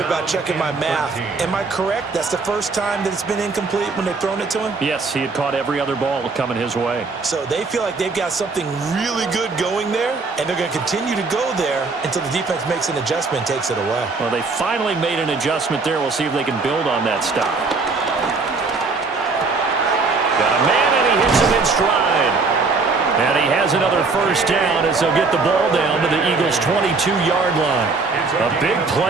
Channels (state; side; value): quieter; left; 4.1 dB